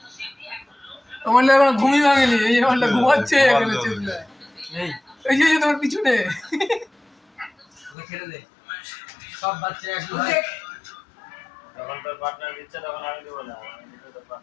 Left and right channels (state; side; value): drops out; right; at 8.0 s